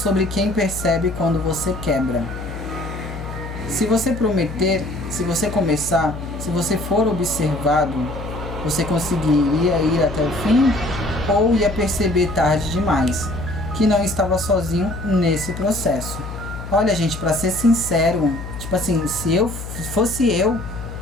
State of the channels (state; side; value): noise; left; hum, 9 dB below the sound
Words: quem percebe quando você quebra. Se você prometer, se você começar, se você for observado, você conseguiria ir até o fim ou ia perceber tarde demais que não estava sozinho nesse processo? Olha, gente, pra ser sincero, tipo assim, se fosse eu